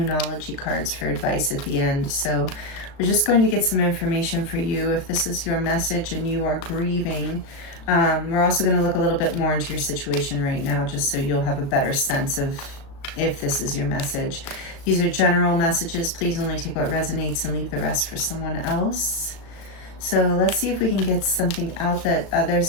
cards for advice at the end. So we're just going to get some information for you if this is your message and you are grieving. We're also going to look a little bit more into your situation right now, just so you'll have a better sense of if this is your message. These are general messages. Please only take what resonates and leave the rest for someone else. So let's see if we can get something out that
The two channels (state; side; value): late; right; 36 ms